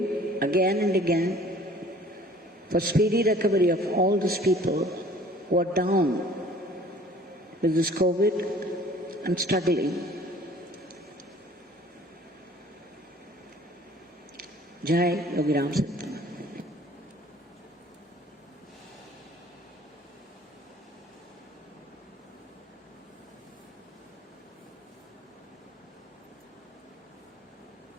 again and again for speedy recovery of all these people who are down with this COVID and struggling. Jai Yogi Ramsuratkumar.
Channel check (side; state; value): both; normal; correlation 0.52